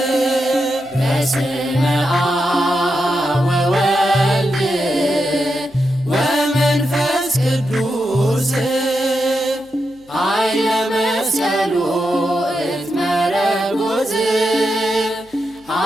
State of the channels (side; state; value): left; noise; hum, 30 dB below the sound